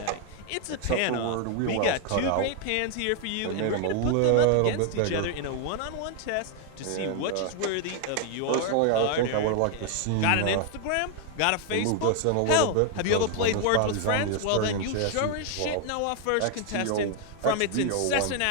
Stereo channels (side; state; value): both; different; correlation 0.00